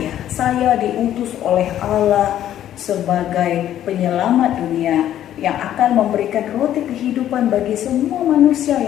diutus oleh Allah sebagai penyelamat dunia yang akan memberikan roti kehidupan bagi semua manusia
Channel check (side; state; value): right; quieter; 11.6 dB